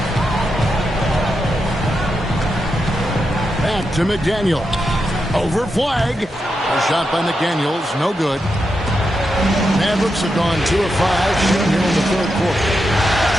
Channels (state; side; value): normal; both; correlation 0.86